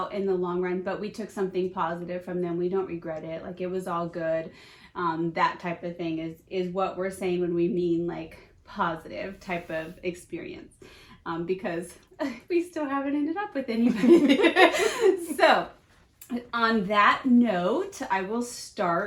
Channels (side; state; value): both; identical; correlation 1.00